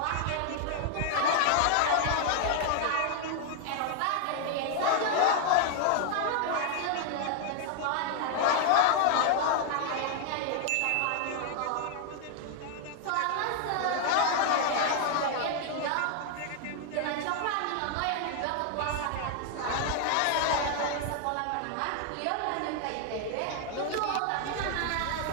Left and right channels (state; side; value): different; both; correlation 0.00